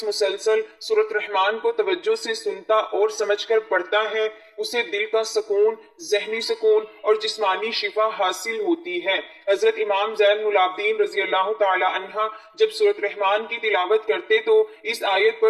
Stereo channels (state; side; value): identical; both; correlation 1.00